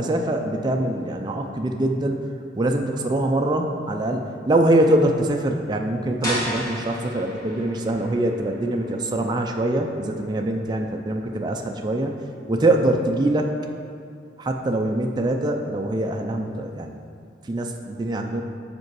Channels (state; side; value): normal; both; correlation 0.62